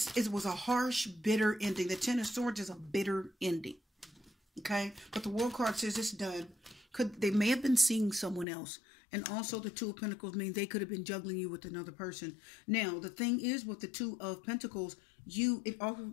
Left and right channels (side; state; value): right; drops out; at 8.5 s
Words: was a harsh, bitter ending. The 10 of Swords is a bitter ending. Okay, but the World card says it's done. They may have been seeing someone else. And also the Two of Pentacles means they could have been juggling you with another person. Now, the thing is with the Two of Pentacles, it